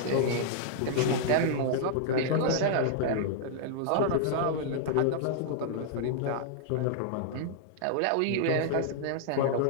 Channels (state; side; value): different; both; correlation -0.01